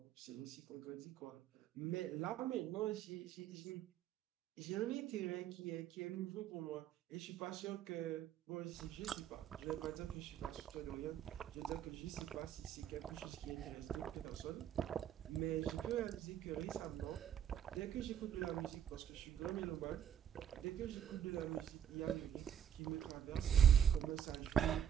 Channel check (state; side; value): quieter; left; 9.4 dB